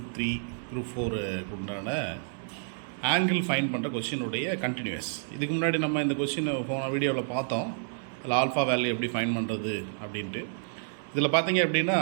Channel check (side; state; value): left; silent; digital silence